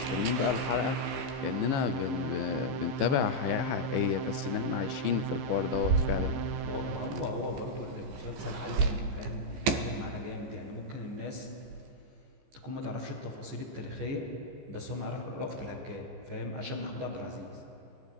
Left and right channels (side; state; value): left; late; 15 ms